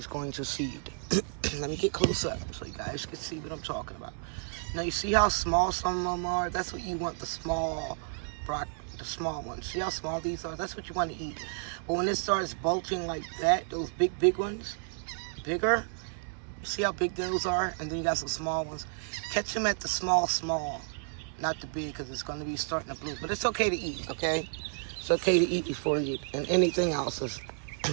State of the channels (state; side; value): silent; left; 57 dB below the other